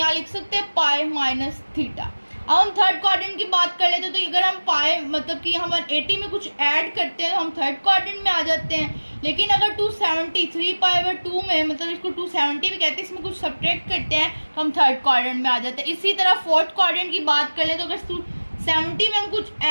लिख सकते हैं π-θ। अब हम थर्ड क्वाड्रेंट की बात कर लेते हैं, तो अगर हम पाए मतलब कि हम 180 में कुछ ऐड करते हैं तो हम थर्ड क्वाड्रेंट में आ जाते हैं। लेकिन अगर 273 π/2 में, मतलब इसको 270 भी कहते हैं, इसमें कुछ सब्ट्रैक्ट करते हैं तो हम थर्ड क्वाड्रेंट में आ जाते हैं। इसी तरह फोर्थ क्वाड्रेंट की बात कर ले तो अगर 270 में हम कुछ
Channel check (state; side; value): inverted; both; correlation -1.00